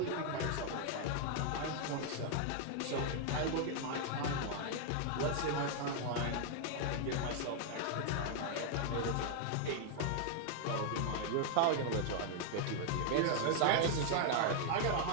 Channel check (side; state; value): both; different; correlation 0.00